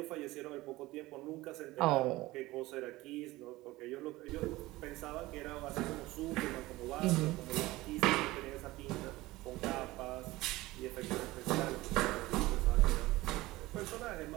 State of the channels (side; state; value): left; quieter; 19.0 dB